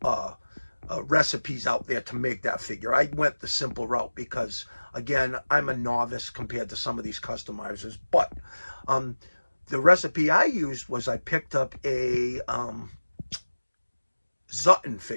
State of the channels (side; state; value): both; inverted; correlation -1.00